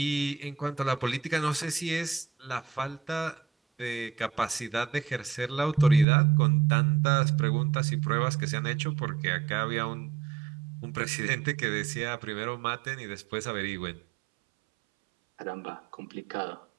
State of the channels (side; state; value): left; drops out; at 6.1 s